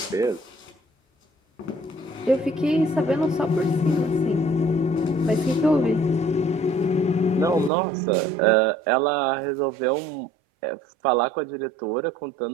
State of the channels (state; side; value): drops out; left; at 7.7 s